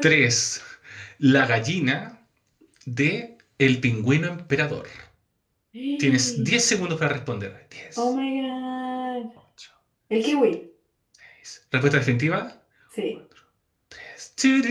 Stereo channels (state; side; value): identical; both; correlation 1.00